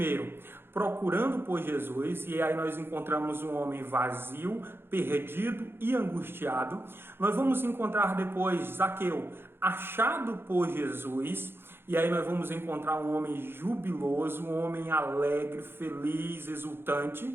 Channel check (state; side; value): late; left; 0.11 ms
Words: procurando por Jesus, e aí nós encontramos um homem vazio, perdido e angustiado. Nós vamos encontrar depois Zaqueu achado por Jesus, e aí nós vamos encontrar um homem jubiloso, um homem alegre, feliz,